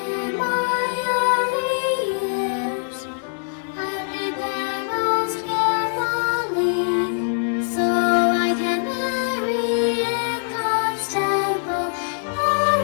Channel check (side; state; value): right; silent; digital silence